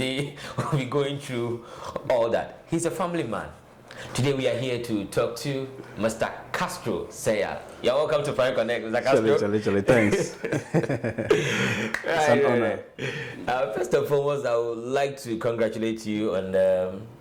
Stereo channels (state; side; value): identical; both; correlation 1.00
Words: we'll be going through all that. He's a family man. Today we are here to talk to Mr. Castro Sayal. You're welcome to Prime Connect, Mr. Castro. Thanks. Right. First and foremost, I would like to congratulate you on